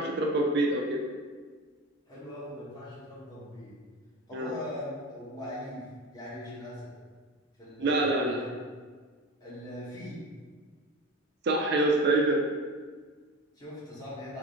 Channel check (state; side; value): normal; both; correlation 0.30